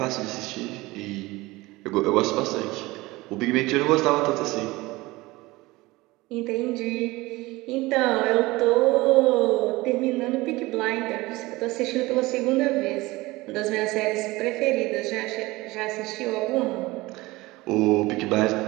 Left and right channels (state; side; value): quieter; left; 20.7 dB